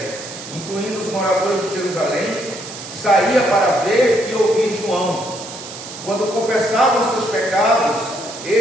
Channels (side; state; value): right; noise; hiss, 12 dB below the sound